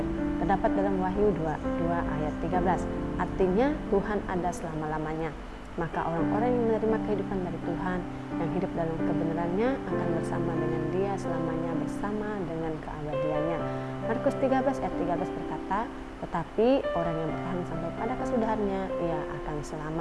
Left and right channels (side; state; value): both; identical; correlation 1.00